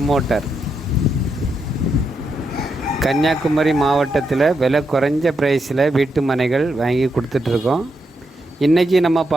கன்னியாகுமரி மாவட்டத்தில் விலை குறைஞ்ச ப்ரைஸில் வீட்டு மனைகள் வாங்கி கொடுத்துட்ருக்கோம். இன்றைக்கி நம்ம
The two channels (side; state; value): both; normal; correlation 0.82